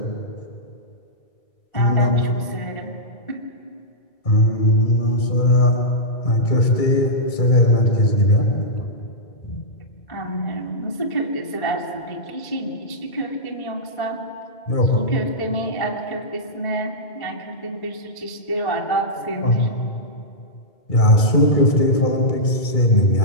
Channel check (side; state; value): right; late; 2.3 ms